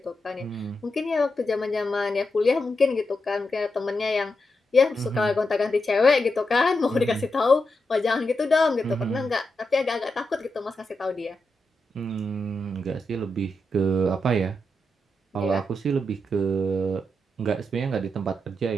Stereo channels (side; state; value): both; normal; correlation 0.86